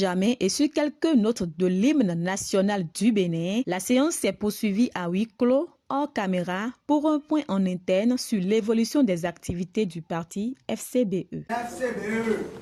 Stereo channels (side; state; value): both; identical; correlation 1.00